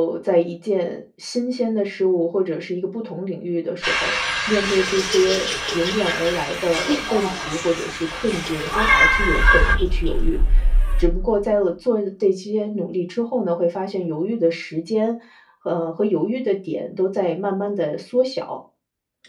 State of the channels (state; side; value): identical; both; correlation 1.00